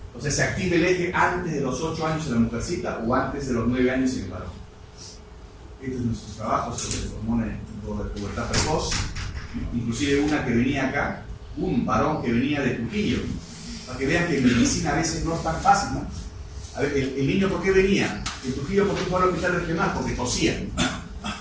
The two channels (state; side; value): identical; both; correlation 1.00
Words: O sea, se activa el eje antes de los 8 años en la mujercita o antes de los 9 años en el varón. Este es nuestro trabajo sobre el hormona de pubertad precoz. Inclusive una que venía acá, un varón que venía de Trujillo, para que vean que en medicina a veces no es tan fácil, ¿no? A ver, el niño, ¿por qué venía? De Trujillo, ¿por qué fue al hospital regional? Porque tosía.